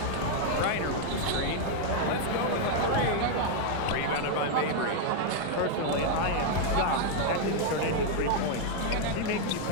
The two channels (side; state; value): both; different; correlation 0.00